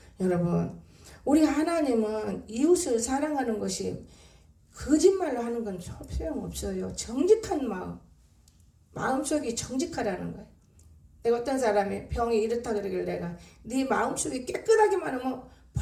여러분, 우리 하나님은 이웃을 사랑하는 것이 거짓말로 하는 건 소용없어요. 정직한 마음속이 정직하라는 거예요. 내가 어떤 사람이 병이 이렇다 그러길래 내가 네 마음속이 깨끗하기만 하면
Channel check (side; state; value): both; identical; correlation 1.00